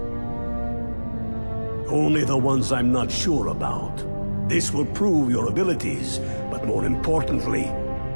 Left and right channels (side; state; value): both; inverted; correlation -1.00